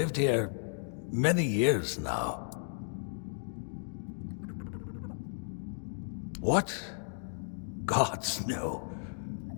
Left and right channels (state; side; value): silent; right; digital silence